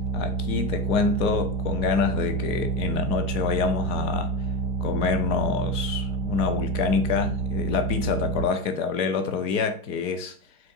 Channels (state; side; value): late; left; 4.1 ms